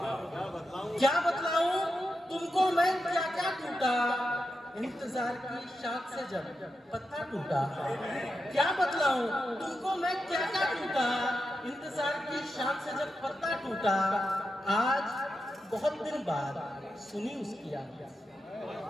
बतलाऊं तुमको मैं, क्या टूटा इंतजार की शाख से जब पत्ता टूटा। क्या बतलाऊं तुमको मैं, क्या टूटा इंतजार की शाख से जब पत्ता टूटा। आज बहुत दिन बाद सुनी उसकी आवाज,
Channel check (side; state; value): both; normal; correlation 0.88